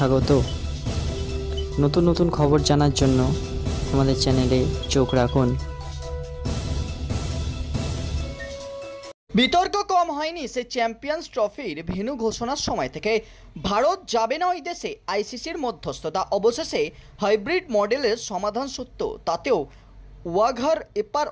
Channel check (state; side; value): identical; both; correlation 1.00